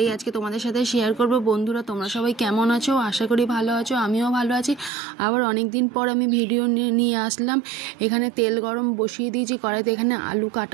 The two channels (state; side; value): drops out; left; at 4.9 s